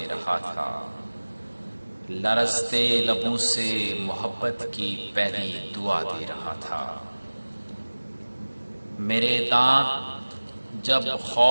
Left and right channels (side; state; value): both; inverted; correlation -1.00